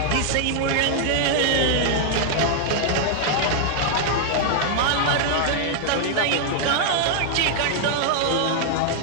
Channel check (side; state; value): both; different; correlation 0.00